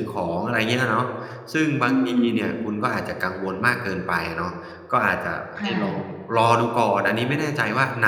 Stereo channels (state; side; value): identical; both; correlation 1.00